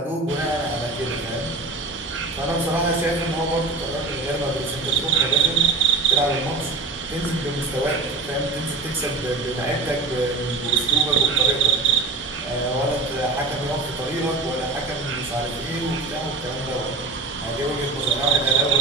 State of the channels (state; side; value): quieter; left; 3.6 dB